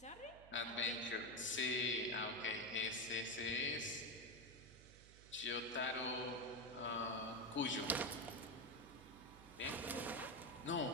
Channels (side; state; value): right; noise; hum, 19 dB below the sound